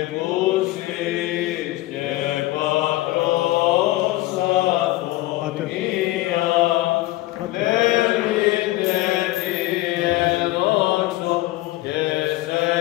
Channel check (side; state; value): right; quieter; 18.0 dB